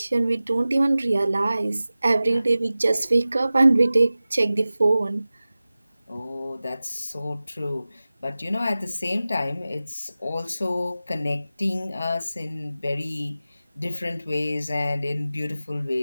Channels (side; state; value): both; inverted; correlation -0.96